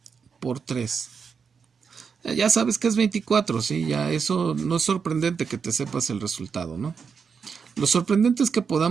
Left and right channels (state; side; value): quieter; left; 6.0 dB